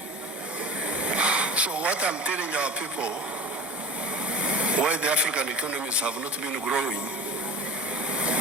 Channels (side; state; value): both; normal; correlation 0.35